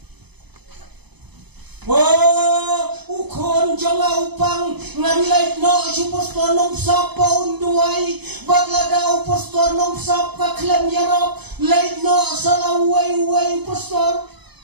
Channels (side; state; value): left; late; 0.99 ms